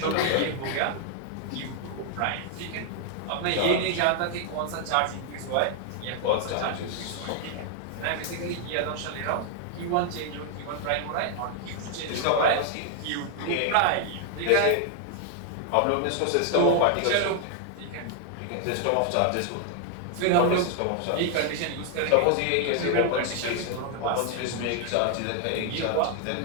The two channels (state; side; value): different; both; correlation 0.00